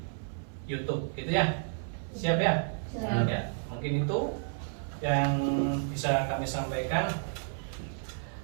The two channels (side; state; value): left; silent; 57 dB below the other